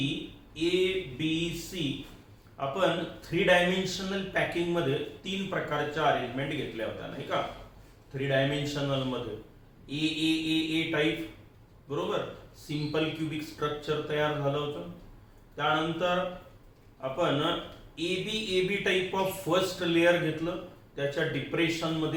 आपण 3 डायमेन्शनल पॅकिंग मध्ये 3 प्रकारच्या अरेंजमेंट घेतल्या होत्या नाही का. 3 डायमेन्शनल मध्ये ए टाइप बरोबर सिंपल क्यूबिक स्ट्रक्चर तयार झालं होतं. त्यानंतर आपण A B type of first layer घेतलं, त्याच्या डिप्रेशन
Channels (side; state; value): both; identical; correlation 1.00